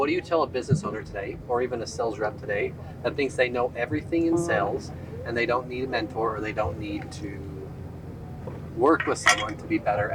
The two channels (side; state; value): both; identical; correlation 1.00